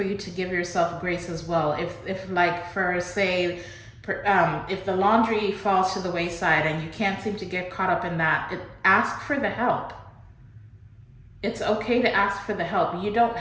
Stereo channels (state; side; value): identical; both; correlation 1.00